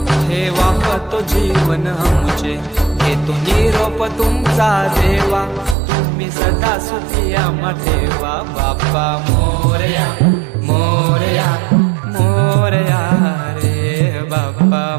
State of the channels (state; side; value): drops out; left; at 5.8 s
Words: ठेवा तो जीवन आमचे घेतो निरोप तुमचा देवा तुम्ही सदा सुखी आम्हा ठेवा बाप्पा मोरया मोरया मोरया रे बाप्पा